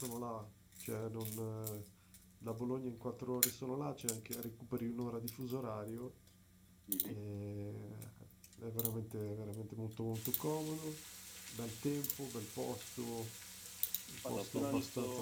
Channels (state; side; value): identical; both; correlation 1.00